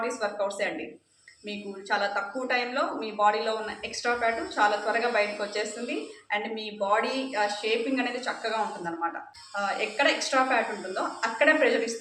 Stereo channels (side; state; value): both; identical; correlation 1.00